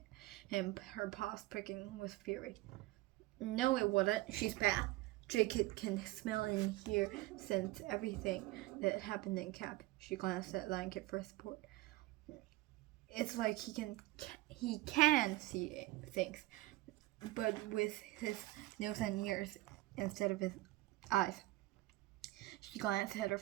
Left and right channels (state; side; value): quieter; left; 18.8 dB